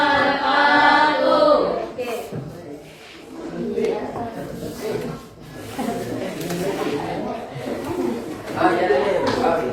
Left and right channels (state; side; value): identical; both; correlation 1.00